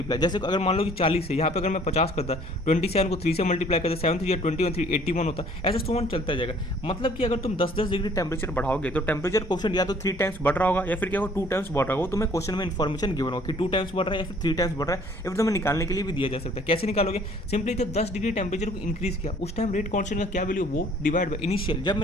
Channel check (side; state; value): both; normal; correlation 0.57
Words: जैसे अगर मान लो कि 40 है, यहाँ पे अगर मैं 50 करता 27 को 3 से मल्टीप्लाई करता 7 3 21 3 81 होता, ऐसे सोन चलता जाएगा। मतलब कि अगर तुम 10-10 डिग्री टेम्परेचर बढ़ाओगे तो टेम्परेचर कोफिशिएंट या तो 3 टाइम्स बढ़ रहा होगा या फिर क्या होगा 2 टाइम्स बढ़ रहा होगा। तुम्हें क्वेश्चन में इन्फॉर्मेशन गिवन होगा कि 2 टाइम्स बढ़ रहा है या फिर 3 टाइम्स बढ़ रहा है, या फिर तुम्हें निकालने के लिए भी दिया जा सकता है। कैसे निकालोगे, सिंपली जब 10 डिग्री टेम्परेचर को इंक्रीज किया उस टाइम रेट कांस्टेंट का क्या वैल्यू वो डिवाइड बाय इनिशियल, जब